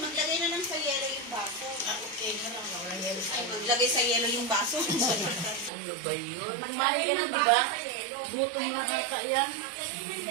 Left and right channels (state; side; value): drops out; left; at 5.7 s